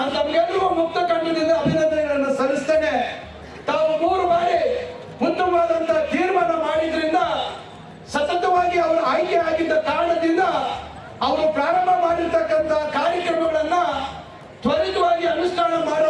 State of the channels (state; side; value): identical; both; correlation 1.00